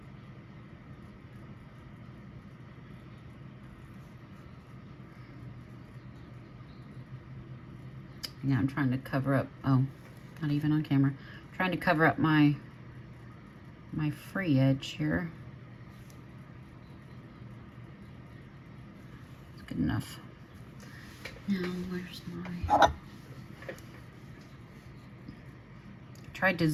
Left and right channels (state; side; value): identical; both; correlation 1.00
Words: Yeah, I'm trying to cover up, oh, not even on camera. I'm trying to cover up my free edge here. It's good enough. Now, where's my... Tried to